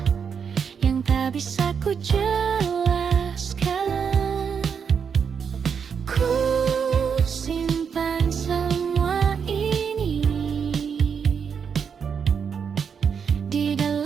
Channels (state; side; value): quieter; left; 6.7 dB